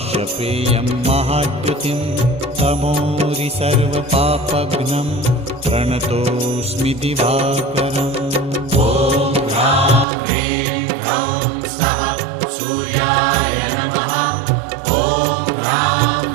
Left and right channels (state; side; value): drops out; left; at 10.1 s